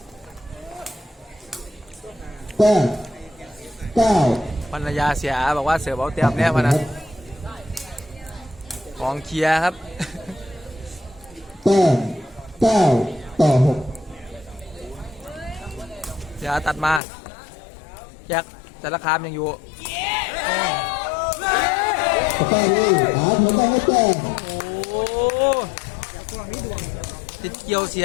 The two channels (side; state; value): right; drops out; at 17.0 s